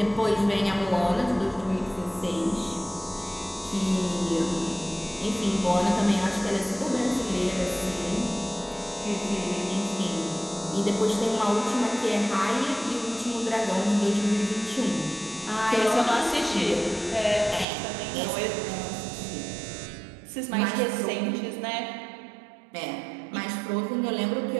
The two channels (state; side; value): drops out; left; at 17.7 s